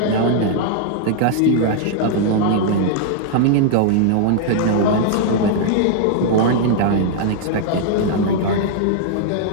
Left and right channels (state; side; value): different; both; correlation -0.01